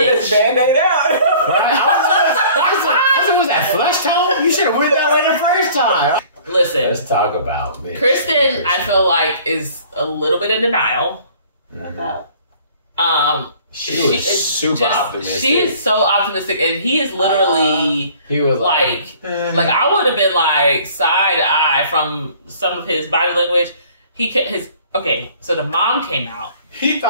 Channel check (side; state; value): both; inverted; correlation -0.52